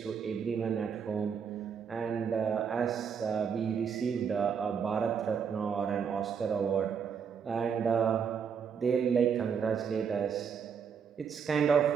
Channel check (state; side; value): quieter; left; 6.8 dB